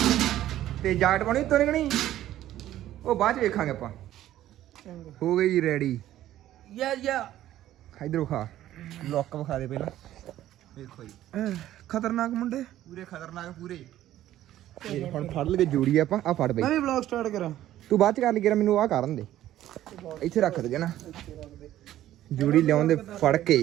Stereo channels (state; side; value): quieter; left; 13.2 dB